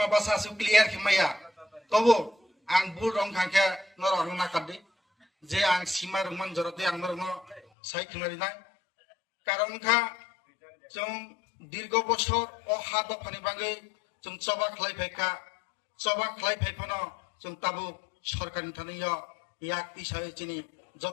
su clear kimaya. Tobo, ang burong kangke norong nakadi. Je ang simar man joroti ang norong sai kimari nai. Karon kha jong dirgo boshor o hado phani bangai jong choba khlai pheka. Choba khlai phekhono jong tabu সরকারি Tania yak isai chini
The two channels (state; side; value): drops out; right; at 7.7 s